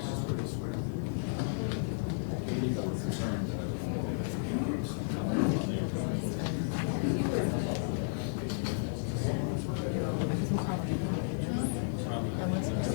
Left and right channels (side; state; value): right; silent; digital silence